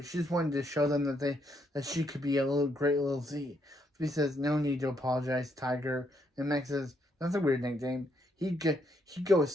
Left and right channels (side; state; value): both; normal; correlation 0.74